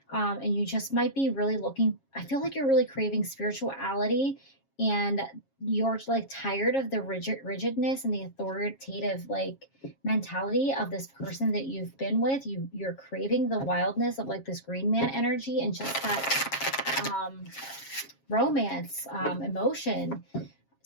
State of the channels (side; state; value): right; late; 7.4 ms